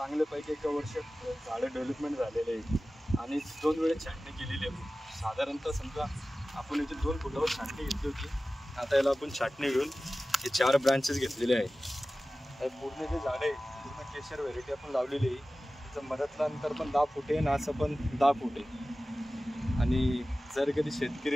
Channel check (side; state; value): both; normal; correlation 0.96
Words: 1 वर्षात झाडं डेव्हलपमेंट झालेले आहे आणि 2 वेळेस छाटणी केलेली आहे. साधारणतः समजा आपण इथे 2 फुटावर छाटणी घेतली होती. आता याला आपण छाटणी घेऊन हे 4 ब्रांचेस घेतलेले आहे. पूर्ण जे झाड आहे पूर्ण केशर व्हेरायटी आपण लावलेली आहे. मधातलं अंतर पण 10 फूट आहे आणि असं पण 10 फूट आहे. आणि जर कधी